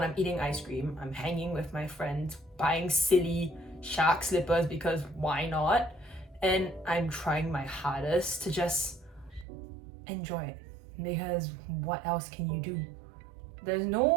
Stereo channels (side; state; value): left; drops out; at 9.5 s